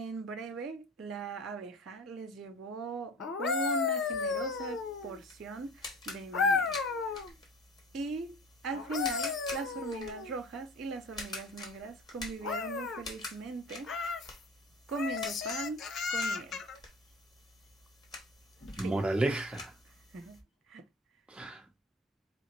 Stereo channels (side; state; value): both; normal; correlation 0.39